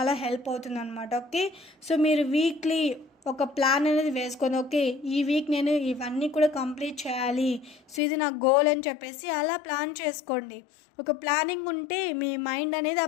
హెల్ప్ అవుతుందనమాట. ఓకే. సో, మీరు వీక్లీ ఒక ప్లాన్ అనేది వేసుకొని ఓకే ఈ వీక్ నేను ఇవన్నీ కూడా కంప్లీట్ చేయాలి. సో, ఇది నా గోల్ అని చెప్పేసి అలా ప్లాన్ చేసుకోండి. ఒక ప్లానింగ్ ఉంటే మీ మైండ్ అనేది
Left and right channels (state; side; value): drops out; right; at 8.0 s